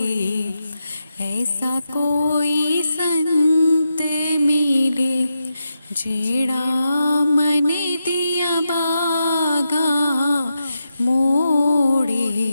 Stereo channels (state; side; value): inverted; both; correlation -0.87